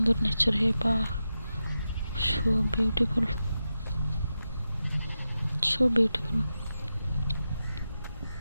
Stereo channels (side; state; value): both; inverted; correlation -0.90